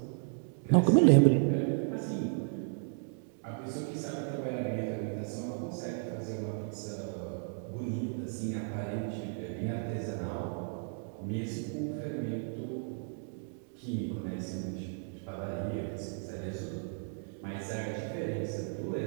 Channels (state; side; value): silent; left; 55 dB below the other